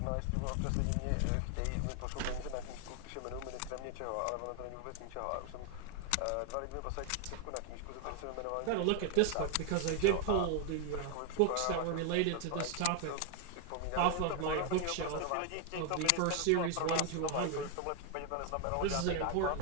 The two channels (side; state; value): both; different; correlation 0.01